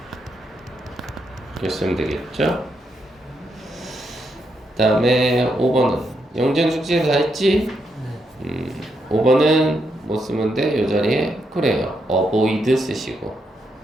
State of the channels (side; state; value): both; normal; correlation 0.80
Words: 이렇게 쓰면 되겠죠? 그 다음에 5번은 영전 숙제 다 했지? 5번은 뭐 쓰면 돼? 이 자리에 그래요. avoid 쓰시고